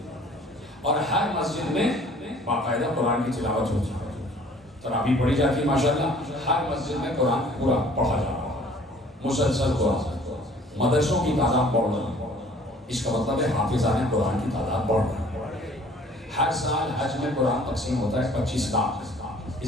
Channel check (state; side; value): normal; both; correlation 0.53